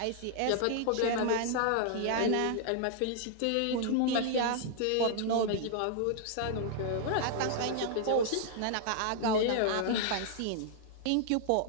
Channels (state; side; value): different; both; correlation -0.01